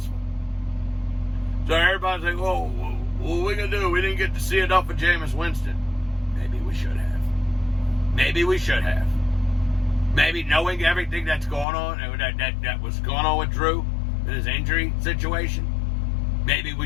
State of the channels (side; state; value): right; drops out; at 11.7 s